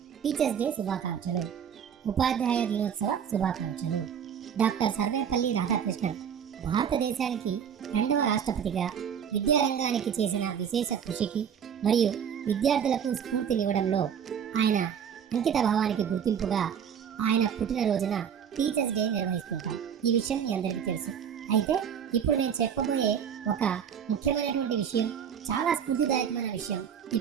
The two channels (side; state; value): left; quieter; 8.0 dB